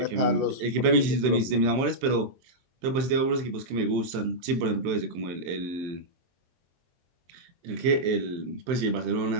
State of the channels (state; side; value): late; left; 23 ms